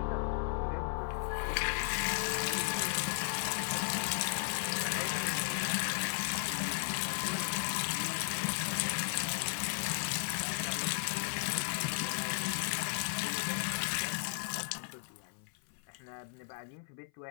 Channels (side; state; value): right; silent; 54 dB below the other